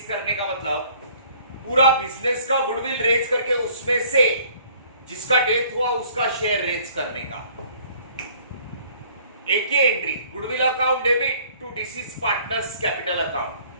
करने का मतलब पूरा बिजनेस का गुडविल रेज करके उसमें से जिसका डेथ हुआ उसका शेयर रेज करने का एक ही entry, goodwill account debit to deceased partners capital account.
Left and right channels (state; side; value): inverted; both; correlation -0.56